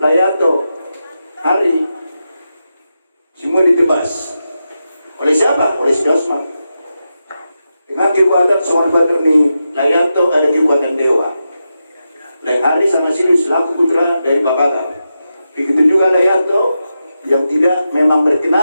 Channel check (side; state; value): both; inverted; correlation -0.89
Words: Layanto hari semua ditebas. Oleh siapa? Oleh si Dosman. Dengan kekuatan seorang badan ni Layanto ada kekuatan dewa. Lain hari sama Siri selaku putra dari Babaga. Begitu juga Layanto yang tidak memang